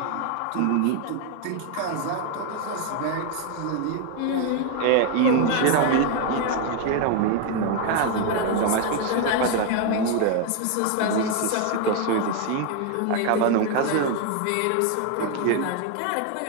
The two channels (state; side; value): different; both; correlation 0.01